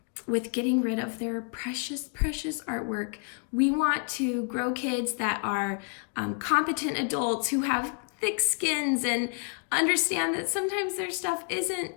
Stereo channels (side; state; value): right; quieter; 38.8 dB